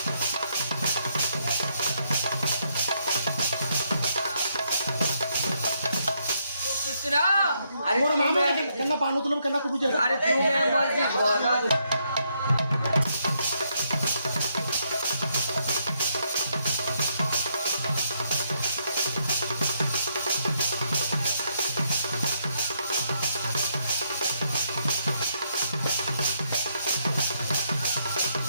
अरे मोर मामा केना पानु तुलम केना तू बुझे अरे तू मैं मर्जी बोला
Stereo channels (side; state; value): both; inverted; correlation -0.75